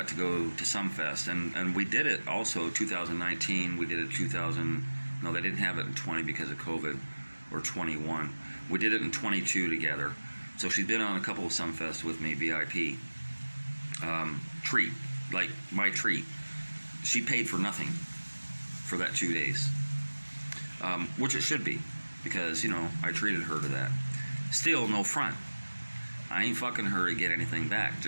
to go to Sumfest, and we did it also 2019. We did it no, they didn't have it in 20 because of COVID, or 21. We did it in 22 together. So she's been on a couple of Sumfests with me, VIP. Treat, like my treat. She paid for nothing for that 2 days, which it should be, because, you know, I treated her to that. Still, no front. I ain't fucking her to get anything back.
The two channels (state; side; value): inverted; both; correlation -1.00